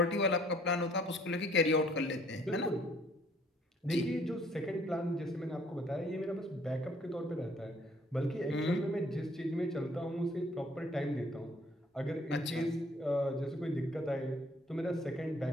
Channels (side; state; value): both; normal; correlation 0.60